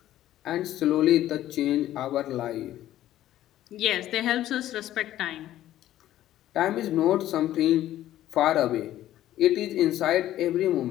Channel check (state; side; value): quieter; right; 13.3 dB